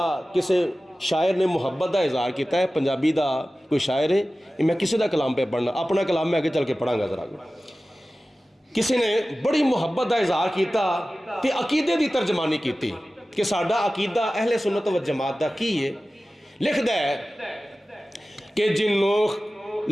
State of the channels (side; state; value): both; normal; correlation 0.96